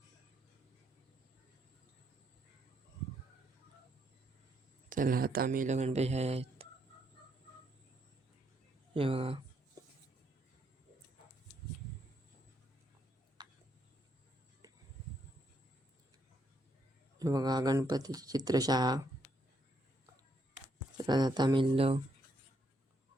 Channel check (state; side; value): normal; both; correlation 0.75